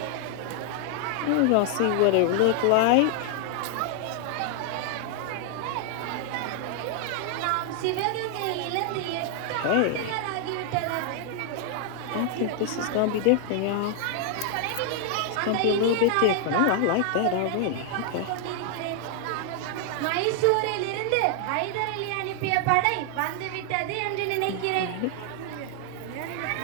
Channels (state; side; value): different; both; correlation 0.00